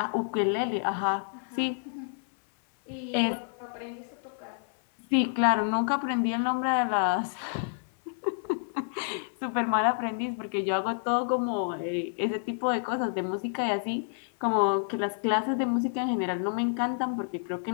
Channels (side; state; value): right; silent; 59 dB below the other